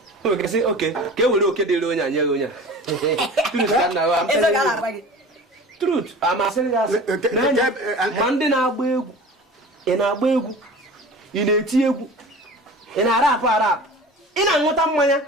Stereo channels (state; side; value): normal; both; correlation 0.39